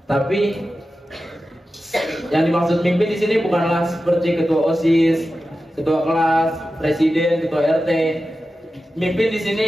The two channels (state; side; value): normal; both; correlation 0.93